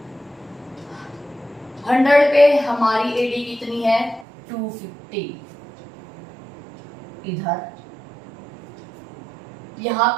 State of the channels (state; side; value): drops out; left; at 4.2 s